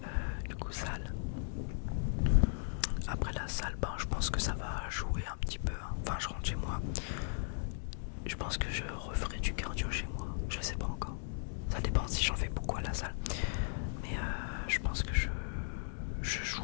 Du coup salle. Après la salle, je pense que ça va jouer un petit peu. Enfin je rentre chez moi. Je pense que je referai du cardio chez moi. Je sais pas encore. Ça dépend si j'en fais beaucoup à la salle. Mais je pense que je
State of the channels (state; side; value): silent; right; digital silence